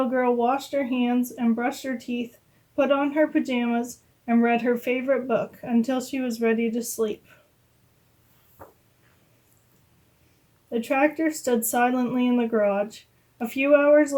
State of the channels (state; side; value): identical; both; correlation 1.00